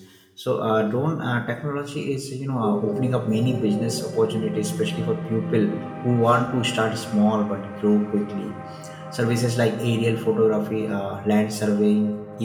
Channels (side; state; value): both; identical; correlation 1.00